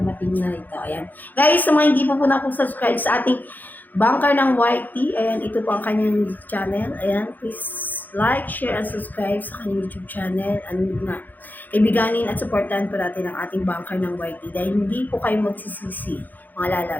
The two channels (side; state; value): right; late; 0.085 ms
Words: na ito. Ayan. Guys, sa mga hindi po na po subscribe sa ating bunker ng YT, ayan, ito po ang kanyang channel. Ayan, please like, share, and subscribe sa kanyang YouTube channel. Ano nga, ibiganin at supportahan po natin ang ating bunker ng YT dahil hindi po kayo magsisisi, mga